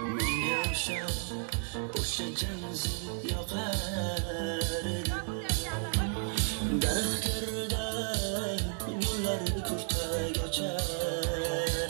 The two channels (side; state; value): left; silent; 56 dB below the other